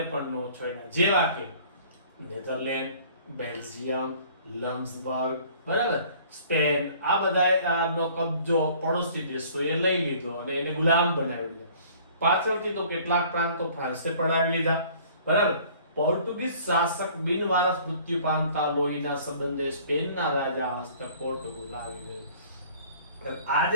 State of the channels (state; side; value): inverted; both; correlation -0.52